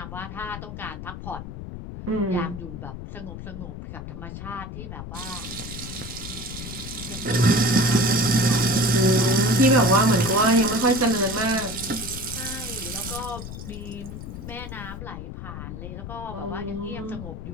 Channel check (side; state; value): left; noise; rumble, 9 dB below the sound